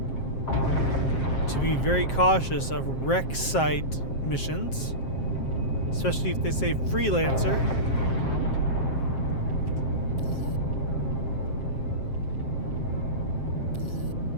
to be very cautious of wreck site missions, especially if they say freelancer.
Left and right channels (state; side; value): late; right; 7.6 ms